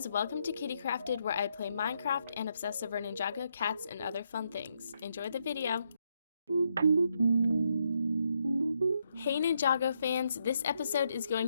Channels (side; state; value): both; inverted; correlation -0.78